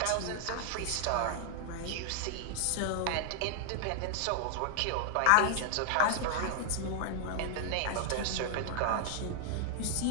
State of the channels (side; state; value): both; different; correlation 0.00